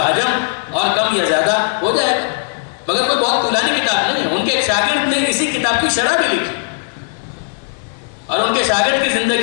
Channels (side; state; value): right; silent; digital silence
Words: حجم اور کم یا زیادہ ہو جائے گا, مگر کوئی بہت طولانی کتاب نہیں ہے. ان کے ایک شاگرد نے اسی کتاب کی شرح بھی لکھی, اور ان کے شاگرد کی